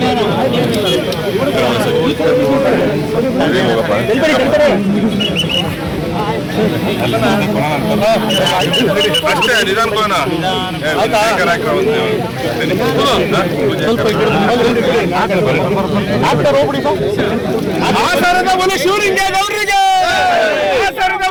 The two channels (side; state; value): both; identical; correlation 1.00